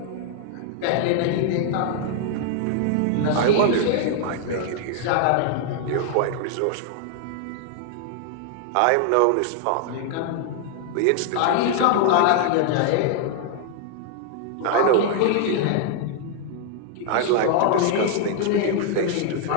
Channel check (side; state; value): both; different; correlation 0.00